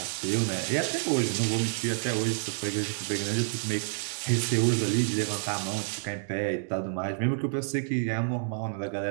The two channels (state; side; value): silent; left; digital silence